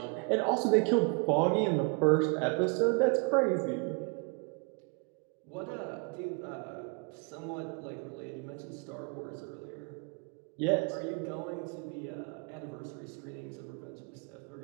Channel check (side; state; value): left; quieter; 34.2 dB